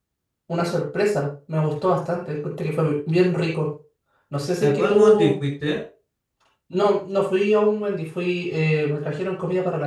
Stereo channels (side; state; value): both; identical; correlation 1.00